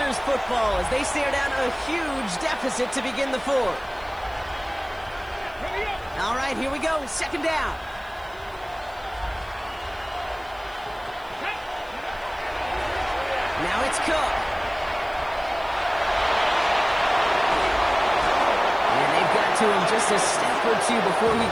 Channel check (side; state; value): right; noise; hiss, 28 dB below the sound